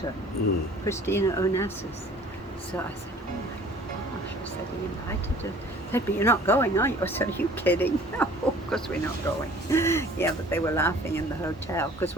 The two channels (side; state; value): both; normal; correlation 0.50